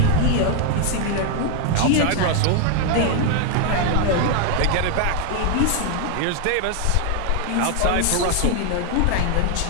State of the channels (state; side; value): different; both; correlation 0.01